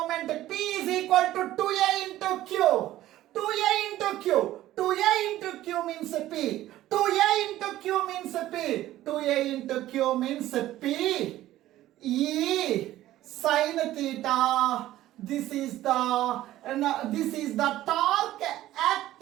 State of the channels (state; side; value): quieter; left; 14.6 dB